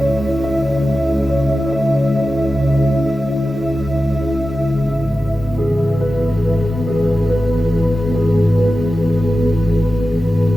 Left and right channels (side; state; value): both; normal; correlation 0.93